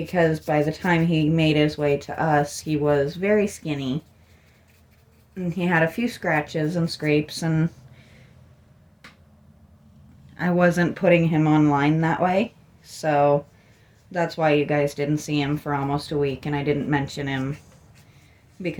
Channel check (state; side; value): identical; both; correlation 1.00